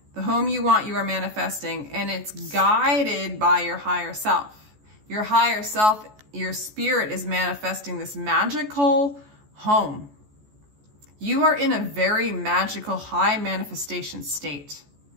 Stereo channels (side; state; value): left; late; 14 ms